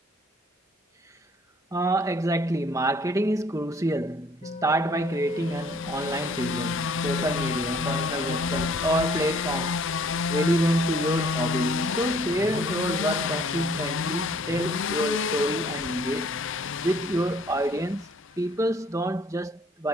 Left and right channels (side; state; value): both; normal; correlation 0.58